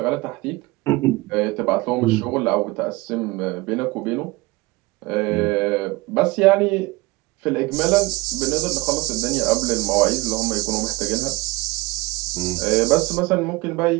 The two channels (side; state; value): left; quieter; 22.4 dB